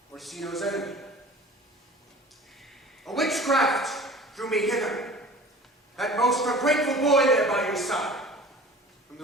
Orsino's enemy. A witchcraft drew me hither. That most ungrateful boy there by your side. From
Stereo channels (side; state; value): both; normal; correlation 0.42